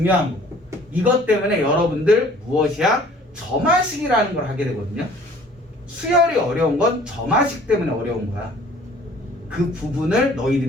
거고, 이것 때문에 여러분들 무엇이야? 점화식이라는 걸 하게 되거든요. 수열이 어려운 건 점화식 때문에 어려운 거야. 그 부분을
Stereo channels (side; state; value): both; normal; correlation 0.53